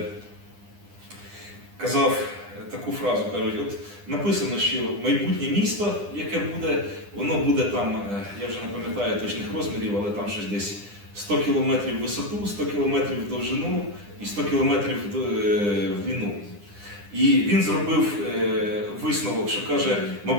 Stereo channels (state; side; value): late; left; 9.9 ms